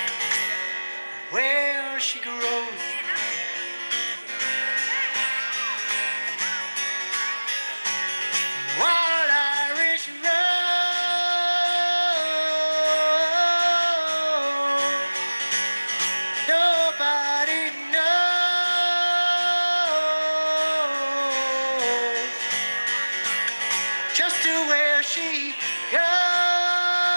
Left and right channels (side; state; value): both; inverted; correlation -1.00